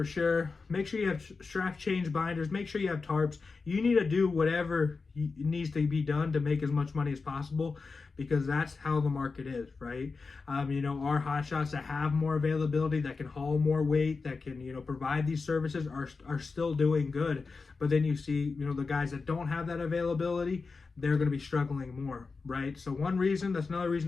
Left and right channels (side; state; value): right; quieter; 4.4 dB